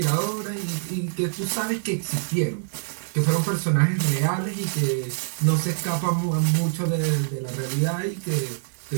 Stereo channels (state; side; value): silent; left; digital silence